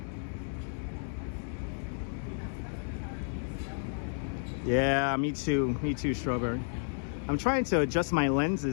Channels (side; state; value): right; silent; digital silence